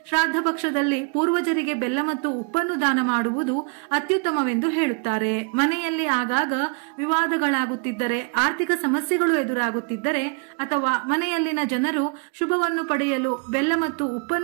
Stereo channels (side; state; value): left; quieter; 34.4 dB